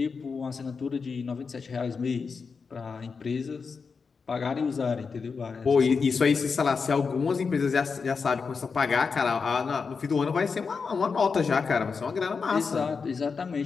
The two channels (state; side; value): quieter; right; 5.2 dB